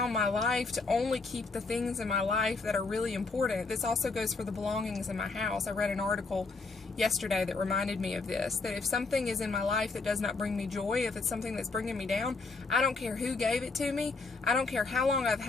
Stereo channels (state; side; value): quieter; right; 4.0 dB